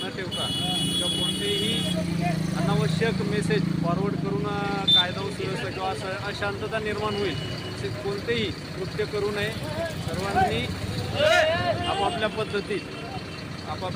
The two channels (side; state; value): both; identical; correlation 1.00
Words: न ठेवता किंवा कोणतेही अनावश्यक मेसेज फॉरवर्ड करून कायदा व सुव्यवस्था किंवा असं अशांतता निर्माण होईल असे कोणतेही कृत्य करू नये. सर्वांनी आपापल्या पद्धतीत